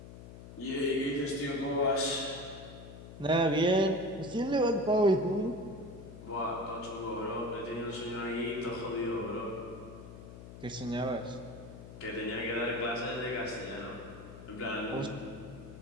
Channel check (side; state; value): left; noise; hum, 14 dB below the sound